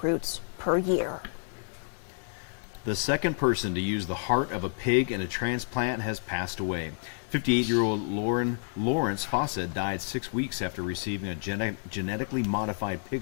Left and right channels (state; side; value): silent; right; 56 dB below the other